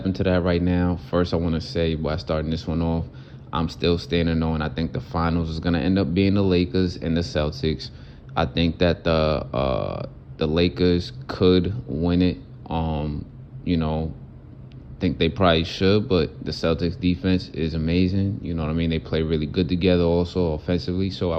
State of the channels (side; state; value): both; identical; correlation 1.00